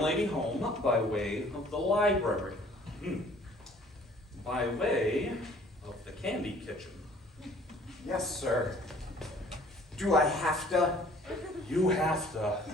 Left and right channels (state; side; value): normal; both; correlation 0.55